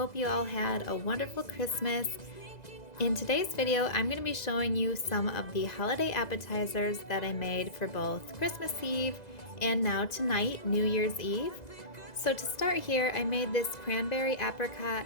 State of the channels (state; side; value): late; right; 2.0 ms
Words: you all had a wonderful Christmas. In today's video, I'm going to be showing you some of the holiday appetizers that I made for both Christmas Eve and now tonight, New Year's Eve. So to start here, I made this cranberry